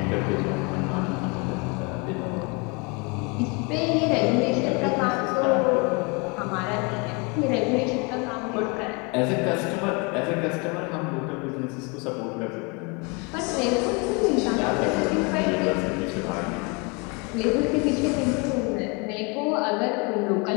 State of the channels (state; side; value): quieter; right; 30.7 dB